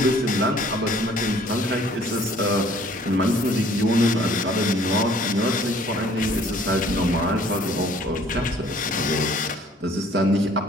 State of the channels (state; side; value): normal; both; correlation 0.56